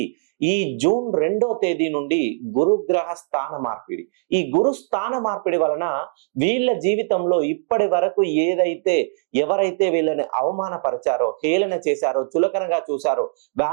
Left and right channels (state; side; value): silent; left; digital silence